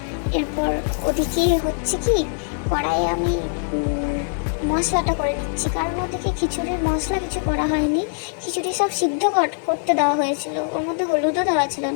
এরপর ওদিকে হচ্ছে কি, কড়াইয়ে আমি মশলাটা করে নিচ্ছি, কারণ ওদিকে খিচুড়ির মশলা কিছু করা হয়নি। খিচুড়ি সব সিদ্ধ করতে দেওয়া হয়েছিল, ওর মধ্যে হলুদও দেওয়া ছিল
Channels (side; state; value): right; silent; digital silence